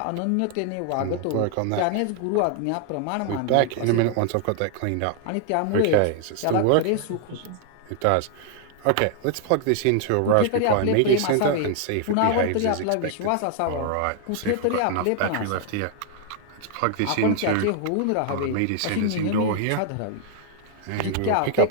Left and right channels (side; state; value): both; different; correlation 0.00